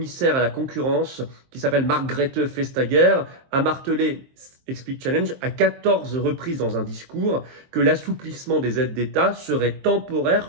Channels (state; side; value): late; left; 23 ms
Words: à la concurrence, qui s'appelle Margrethe Vestager, a martelé, explique Challenge, à 14 reprises dans un discours, que l'assouplissement des aides d'État serait